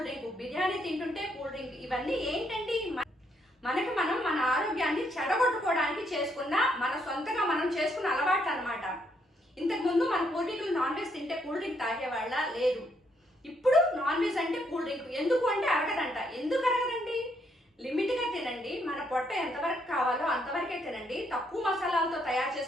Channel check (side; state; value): both; normal; correlation 0.74